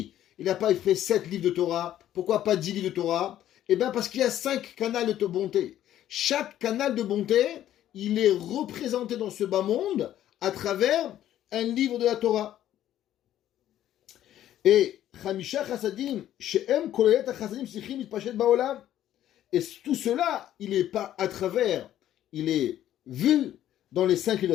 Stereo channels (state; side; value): quieter; right; 12.1 dB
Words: il n'a pas fait 7 livres de Torah? Pourquoi pas 10 livres de Torah? Eh bien parce qu'il y a 5 canals de bonté. Chaque canal de bonté, il est représenté dans ce bas monde à travers un livre de la Torah. Et Chamisha Chassadim, She'em Kolelet Chassadim Sichim Mitpashet Baolam. Et tout cela, il est pas à travers, il est vu dans les 5 livres de